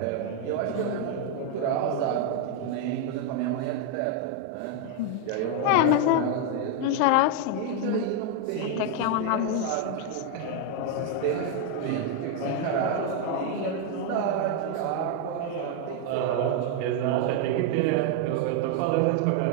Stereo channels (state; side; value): different; both; correlation 0.01